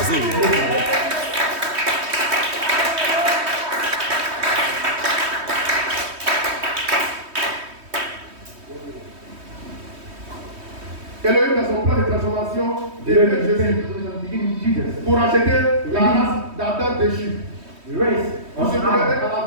Elohim, dans son plan de transformation, développe Jésus pour acheter la race d'Adam déchu. On se connecte à la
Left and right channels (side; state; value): left; late; 3.2 ms